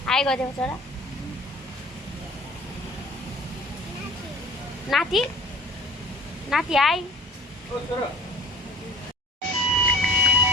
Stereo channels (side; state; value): both; normal; correlation 0.46